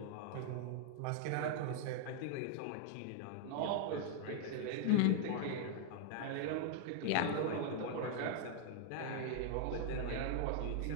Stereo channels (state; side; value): different; both; correlation 0.00